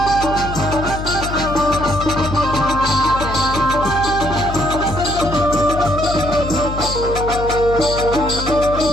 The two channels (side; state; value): left; noise; hum, 6 dB below the sound